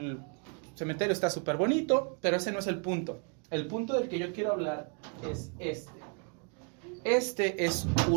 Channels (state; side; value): quieter; left; 38.4 dB